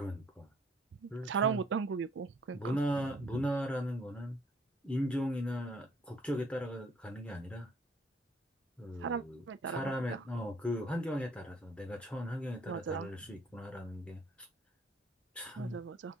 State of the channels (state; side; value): normal; both; correlation 0.61